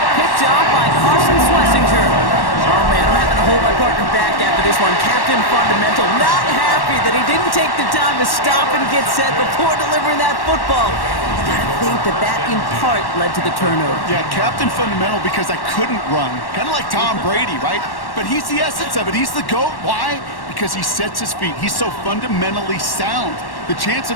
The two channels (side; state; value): right; late; 1.1 ms